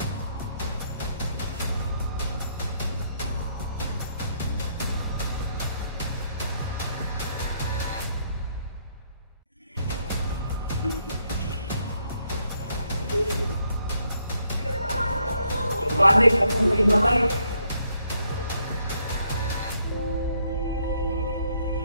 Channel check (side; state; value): both; inverted; correlation -0.72